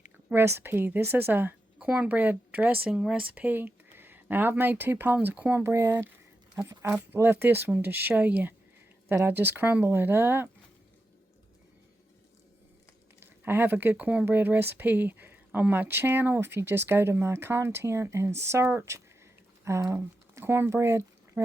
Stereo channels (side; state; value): both; normal; correlation 0.88